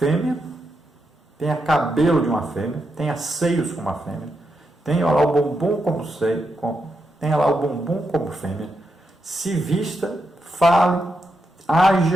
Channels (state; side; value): normal; both; correlation 0.84